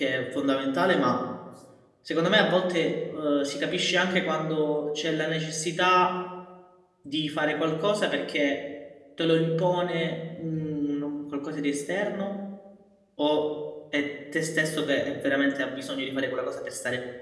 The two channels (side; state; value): both; identical; correlation 1.00